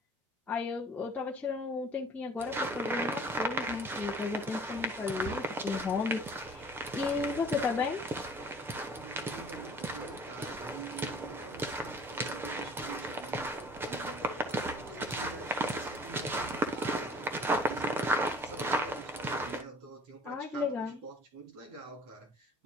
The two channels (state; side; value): normal; both; correlation 0.50